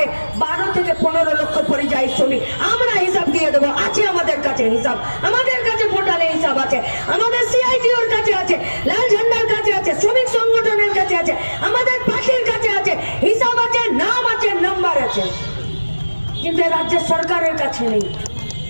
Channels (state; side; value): inverted; both; correlation -1.00